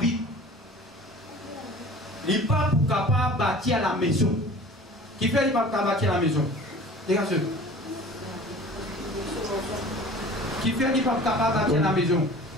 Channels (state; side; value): normal; both; correlation 0.43